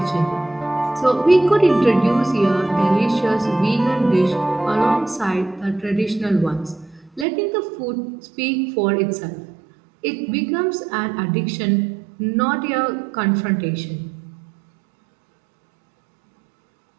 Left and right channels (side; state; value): left; drops out; at 7.2 s